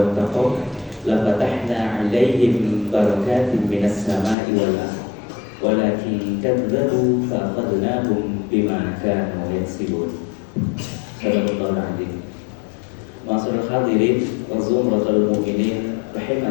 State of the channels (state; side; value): drops out; right; at 4.4 s